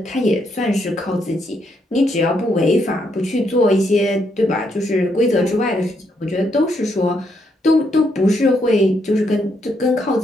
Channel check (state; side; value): normal; both; correlation 0.76